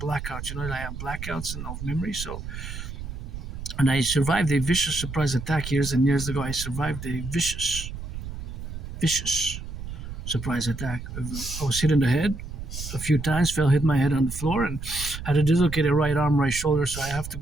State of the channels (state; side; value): noise; right; rumble, 8 dB below the sound